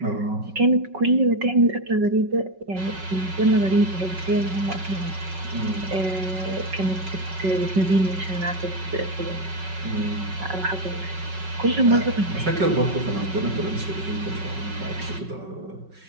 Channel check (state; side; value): late; left; 5.4 ms